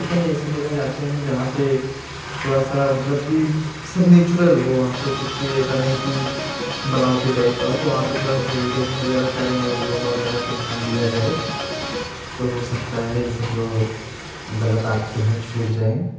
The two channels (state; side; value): identical; both; correlation 1.00